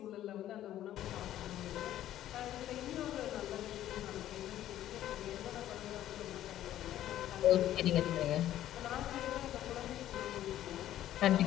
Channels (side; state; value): right; quieter; 12.6 dB